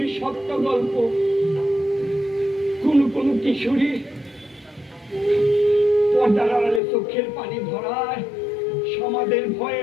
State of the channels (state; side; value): drops out; right; at 6.8 s